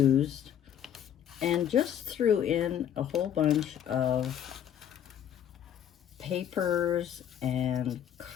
And just threw in a whole bunch of papers and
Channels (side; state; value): right; quieter; 9.8 dB